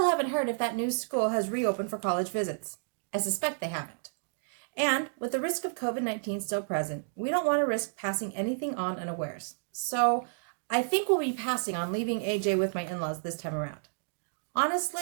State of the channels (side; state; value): left; silent; digital silence